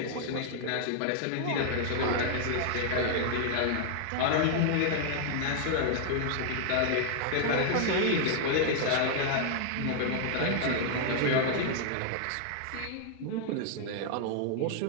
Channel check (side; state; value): both; different; correlation -0.01